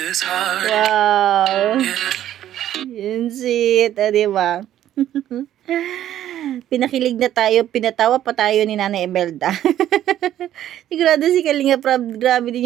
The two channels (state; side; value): quieter; left; 11.9 dB